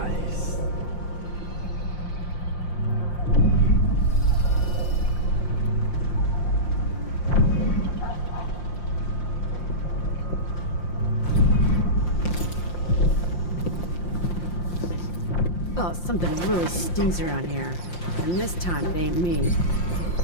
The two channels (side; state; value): right; late; 5.7 ms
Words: Oh, something really stinks around here. And this time it ain't me.